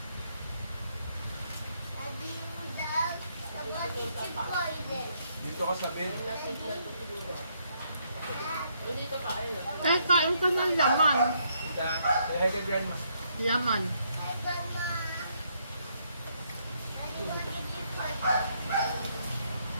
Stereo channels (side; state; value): both; inverted; correlation -0.73